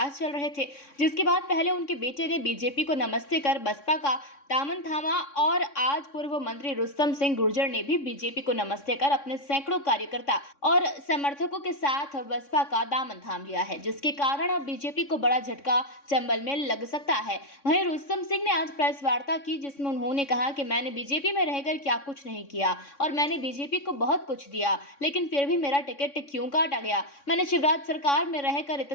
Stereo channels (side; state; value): right; late; 3.6 ms